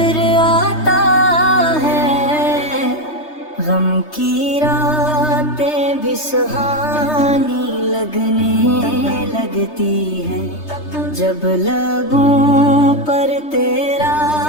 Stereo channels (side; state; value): right; late; 3.3 ms